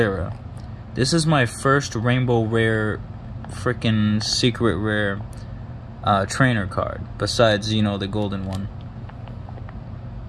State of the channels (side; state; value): both; identical; correlation 1.00